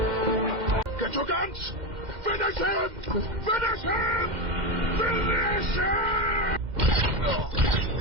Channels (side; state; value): left; late; 2.1 ms